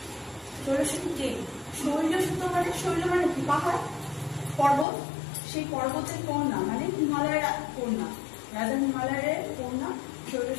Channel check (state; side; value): drops out; right; at 4.9 s